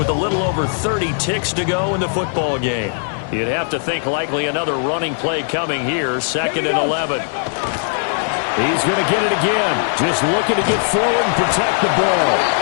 a little over 30 ticks to go in the football game. You'd have to think likely another running play coming here, 2nd and 11. He's going to get it again. Just looking to get forward and protect the ball.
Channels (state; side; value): silent; right; 60 dB below the other